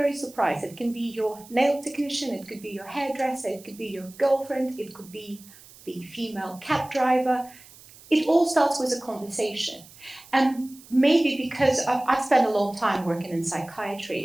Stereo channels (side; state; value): right; noise; hiss, 22 dB below the sound